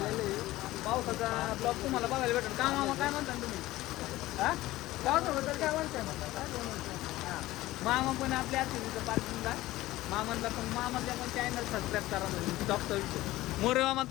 आहे. पावसाचा ब्लॉग तुम्हाला बघायला भेटेल का मामा? काय म्हणता तुम्ही? हा, पावसाबद्दल काय म्हणता? हां, मामा पण आपल्या तिथं पार्किंगला मामांना पण मामाच्या पण चॅनल सबस्क्राईब करा. म्हणजे टॉपचा विषय मोरे मामा,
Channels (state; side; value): quieter; right; 17.1 dB